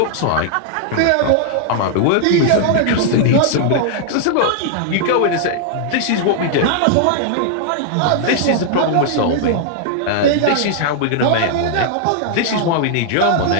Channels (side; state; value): both; different; correlation -0.01